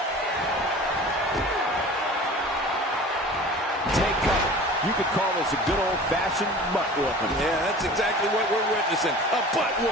Take cover. You could call this a good old-fashioned butt whooping. Yeah, that's exactly what we're witnessing. A butt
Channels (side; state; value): both; normal; correlation 0.40